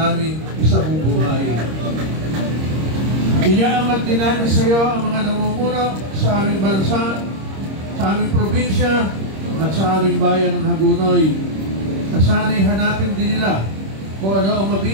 isabubuhay. Inaangat din namin sa iyo ang mga namumuno sa aming bansa, sa aming probinsya at sa aming bayan ng Hagonoy. Na sana'y hanapin din nila kung ano ang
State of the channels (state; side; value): late; left; 26 ms